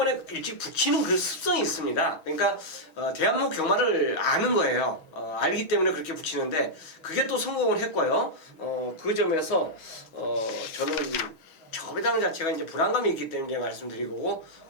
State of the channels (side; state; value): right; late; 6.3 ms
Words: 일찍 붙이는 그 습성이 있습니다. 그러니까 대한민국 경마를 아는 거예요. 알기 때문에 그렇게 붙이는데 그게 또 성공을 했고요. 그 점에서 저는 저배당 자체가 이제 불안감이 있기 때문에 말씀드리고